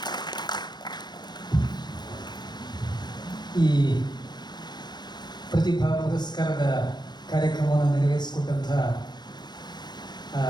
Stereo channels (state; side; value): late; right; 0.21 ms